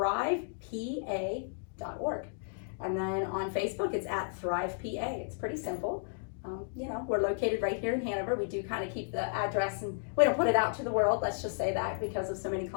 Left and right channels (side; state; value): right; silent; digital silence